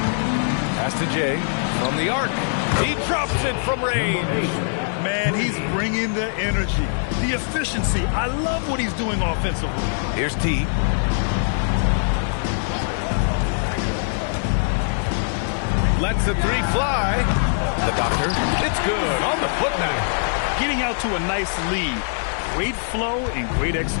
Pass to Jay from the arc. He drops it from range. Man, he's bringing the energy, the efficiency. I love what he's doing offensively. Here's T. Lets the 3 fly. The doctor. It's good on the putback. Getting out to a nice lead. Great flow and great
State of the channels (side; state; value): right; silent; digital silence